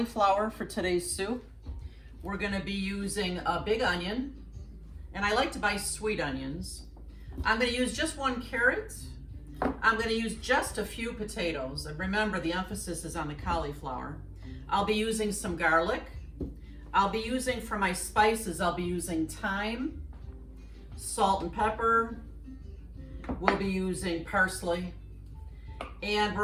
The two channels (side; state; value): both; identical; correlation 1.00